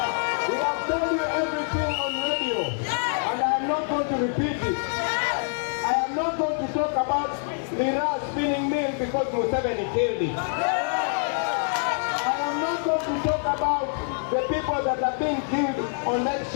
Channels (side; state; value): right; silent; 61 dB below the other